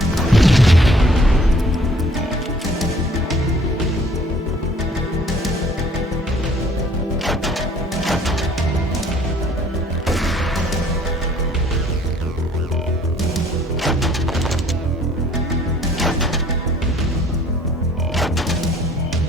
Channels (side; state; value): both; normal; correlation 0.57